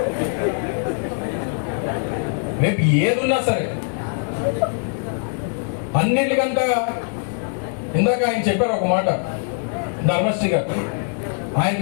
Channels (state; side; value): silent; right; 64 dB below the other